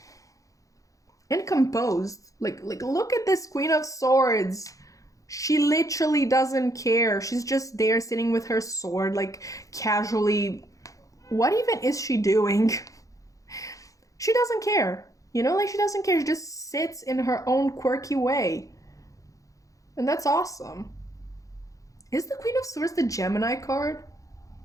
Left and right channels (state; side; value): late; right; 0.16 ms